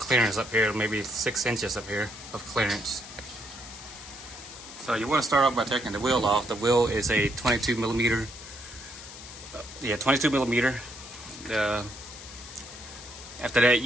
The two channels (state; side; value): noise; left; hiss, 14 dB below the sound